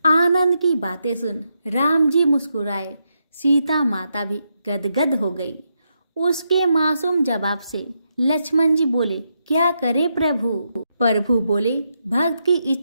आनंद की बातें सुन राम जी मुस्कुराए, सीता माता भी गदगद हो गई। उसके मासूम जवाब से लक्ष्मण जी बोले, क्या करे प्रभु? प्रभु बोले, भक्त की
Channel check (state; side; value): inverted; both; correlation -0.82